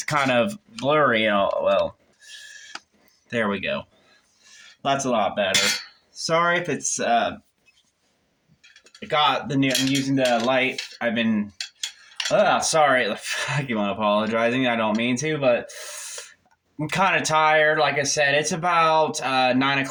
kind of blurry. Well, there we go. That's a lot better. Sorry if it's got the new. I'm using the light. I've been. Sorry. I keep on apologizing. I don't mean to, but I'm kind of tired. Like I said, it's about 9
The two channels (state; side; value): identical; both; correlation 1.00